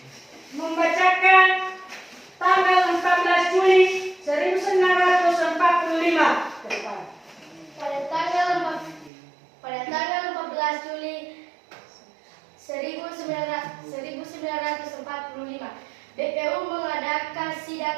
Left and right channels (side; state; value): left; drops out; at 9.1 s